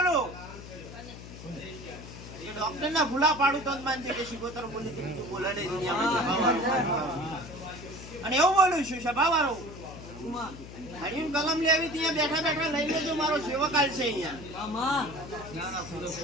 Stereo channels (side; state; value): left; noise; hum, 14 dB below the sound